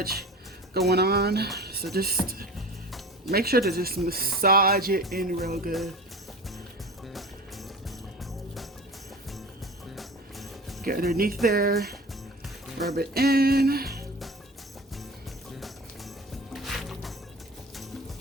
going on. So just make sure to just massage it in real good. Get underneath there, rub it in.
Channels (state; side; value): normal; both; correlation 0.36